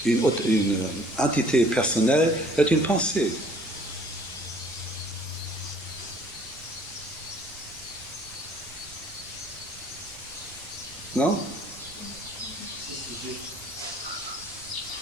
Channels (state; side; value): noise; right; rumble, 21 dB below the sound